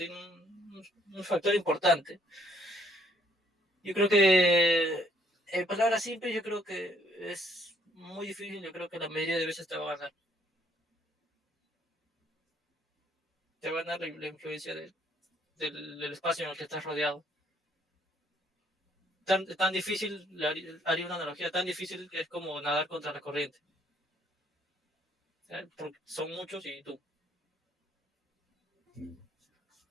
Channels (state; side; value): normal; both; correlation 0.65